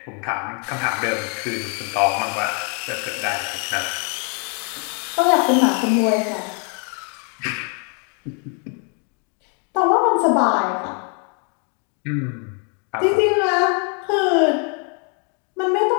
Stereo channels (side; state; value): right; quieter; 38.3 dB